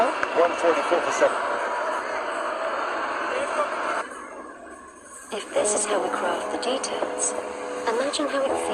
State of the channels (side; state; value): both; identical; correlation 1.00